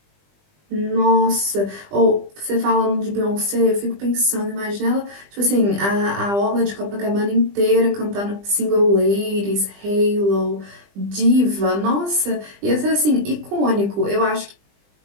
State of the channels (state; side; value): late; left; 20 ms